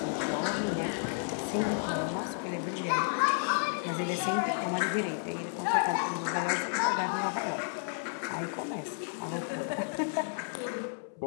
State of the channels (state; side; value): silent; right; 56 dB below the other